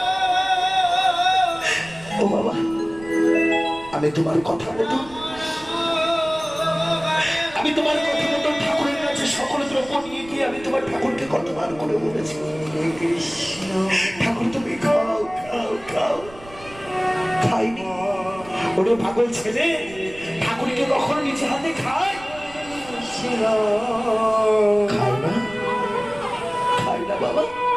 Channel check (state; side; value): noise; right; rumble, 20 dB below the sound